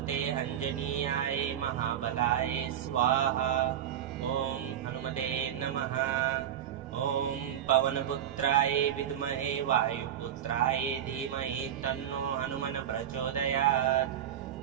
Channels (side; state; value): left; quieter; 10.2 dB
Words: अंजनीयाय महाबलाय स्वाहा। ॐ हनुमते नमः। ॐ पवनपुत्राय विद्महे वायुपुत्राय धीमहि तन्नो हनुमन् प्रचोदयात्।